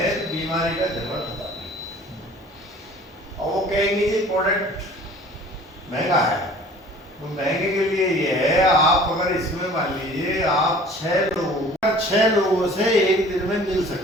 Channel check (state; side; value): normal; both; correlation 0.48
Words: तो बीमारी का जरूरत होता है। और वो कहेंगे जी प्रोडक्ट महंगा है, तो महंगे के लिए ये है, आप अगर इसमें मान लीजिए आप 6 लोगों से एक दिन में मिल